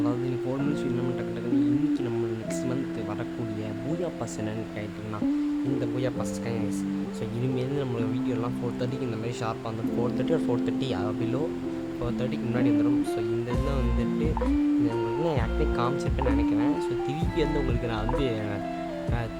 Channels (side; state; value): both; identical; correlation 1.00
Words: 4 மினிட்ஸ் நம்ம டக்கு டக்குன்னு இன்றைக்கி நம்ம நெக்ஸ்ட் மந்த் வரக்கூடிய பூயா பாஸ் என்னென்னு கேட்டிங்கன்னா இந்த பூயா பாஸ் கைஸ். ஸோ இனிமேல் நம்மளோட வீடியோலாம் 4:30க்கு இந்த மாதிரி ஷார்ப்பாக வந்துடும். 4:30 ஒரு 4:30 பிலோ 4:30க்கு முன்னாடி வந்துடும். ஸோ இந்த இதில் வந்துட்டு உங்களுக்கு நான் ஆக்சுவலி காமிச்சிருப்பேன்னு நினைக்கிறேன். ஸோ திருப்பி வந்து உங்களுக்கு நான் வந்து